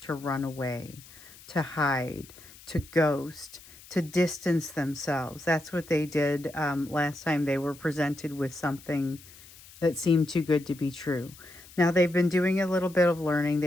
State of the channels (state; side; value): noise; left; hiss, 21 dB below the sound